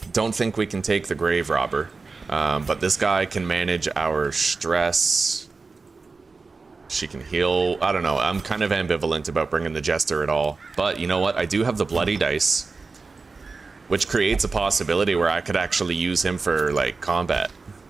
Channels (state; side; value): quieter; left; 4.2 dB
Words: Don't think we can take the grave robber, but this guy can manage our stress. She can heal. I don't know. I'm kind of ambivalent about bringing the jester at all. But you know what? I do have the bloody dice, which creates a possibility where I could actually use him for, like, combat.